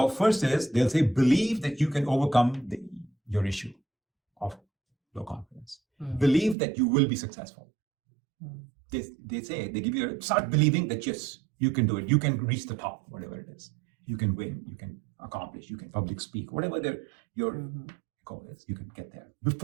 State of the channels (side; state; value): left; drops out; at 6.6 s